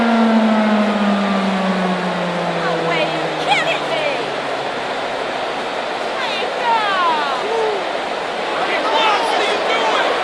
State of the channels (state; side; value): identical; both; correlation 1.00